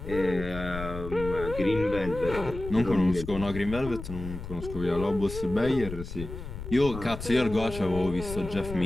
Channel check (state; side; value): noise; left; rumble, 9 dB below the sound